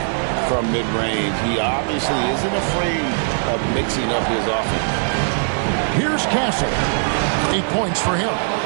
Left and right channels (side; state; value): left; silent; digital silence